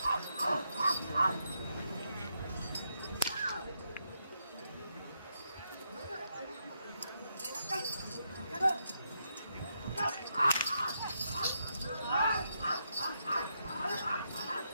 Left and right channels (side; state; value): both; inverted; correlation -0.80